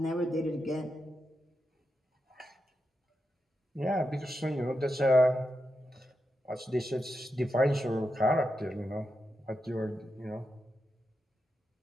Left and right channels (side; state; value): both; normal; correlation 0.87